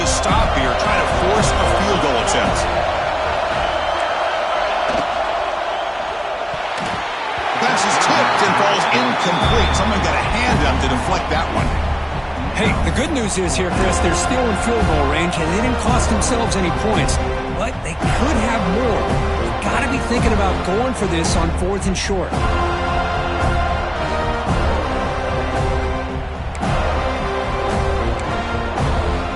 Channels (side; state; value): both; identical; correlation 1.00